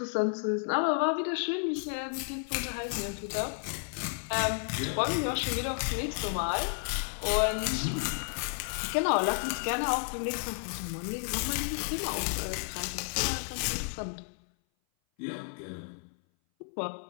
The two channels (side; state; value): right; silent; 56 dB below the other